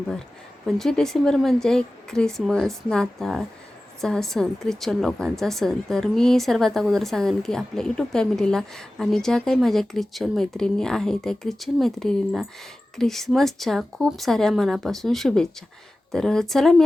25 डिसेंबर म्हणजे ख्रिसमस, नाताळ चा सण, ख्रिश्चन लोकांचा सण. तर मी सर्वात अगोदर सांगेन की आपल्या यूट्यूब फॅमिलीला आणि ज्या काही माझ्या ख्रिश्चन मैत्रिणी आहे त्या ख्रिश्चन मैत्रिणींना ख्रिसमसच्या खूप साऱ्या मनापासून शुभेच्छा. तर चला, मी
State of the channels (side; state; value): both; normal; correlation 0.96